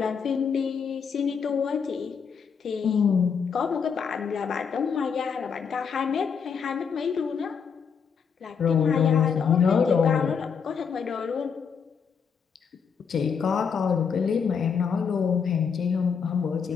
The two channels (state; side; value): quieter; right; 6.4 dB